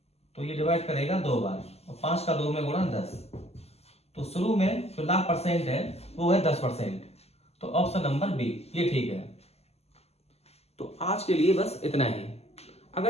तो ये डिवाइड करेगा 2 बार, और 5 का 2 में गुणा 10। तो शुरू में जो लाभ परसेंट है वो है 10%। तो ऑप्शन नंबर बी ये ठीक है। तो आज के लिए बस इतना ही।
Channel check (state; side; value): late; right; 0.30 ms